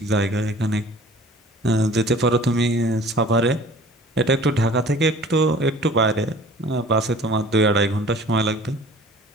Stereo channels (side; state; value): both; normal; correlation 0.48